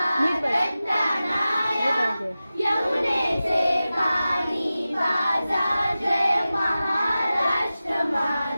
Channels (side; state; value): both; inverted; correlation -0.95